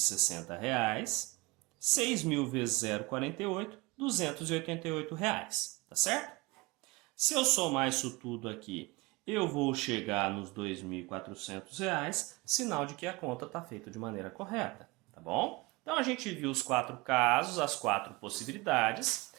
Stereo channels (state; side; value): quieter; left; 23.9 dB